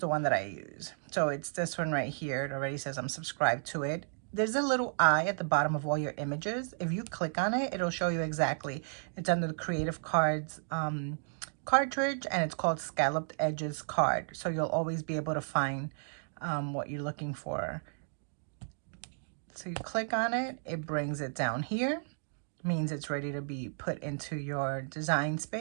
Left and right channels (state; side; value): silent; left; digital silence